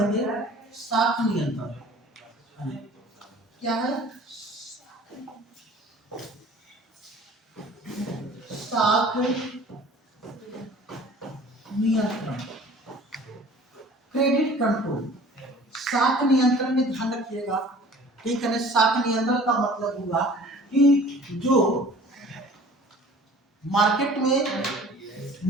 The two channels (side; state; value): both; normal; correlation 0.47